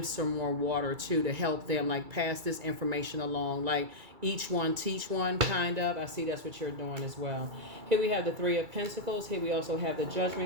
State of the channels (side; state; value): left; late; 2.3 ms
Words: some more water too, to help them, like pass this information along. Like each one teach one, kind of. I see that's what you're doing as well. Here we have the Three of Pentacles. Here we also have the